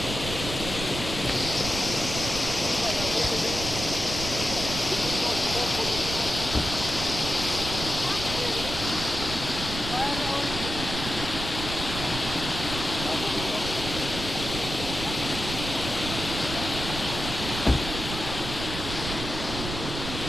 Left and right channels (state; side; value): noise; right; rumble, 6 dB below the sound